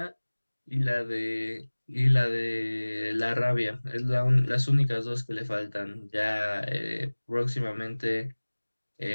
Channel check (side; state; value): both; inverted; correlation -1.00